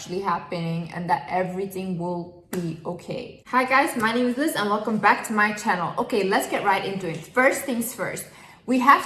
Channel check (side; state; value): both; identical; correlation 1.00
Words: happening and that everything will be okay. Hi guys, my name is Liz and welcome back to my channel. Okay, let's get right into it. First things first, we